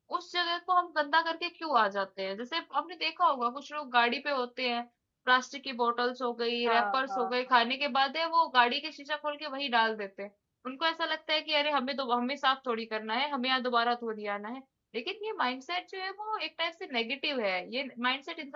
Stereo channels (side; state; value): both; identical; correlation 1.00